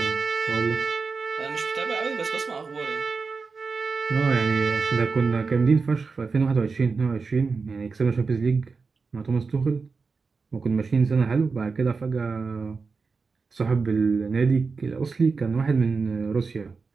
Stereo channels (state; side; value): quieter; left; 4.7 dB